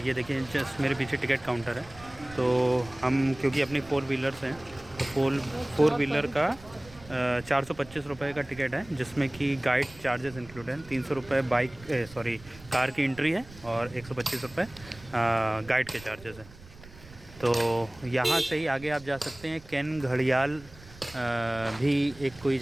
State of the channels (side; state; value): right; noise; rumble, 20 dB below the sound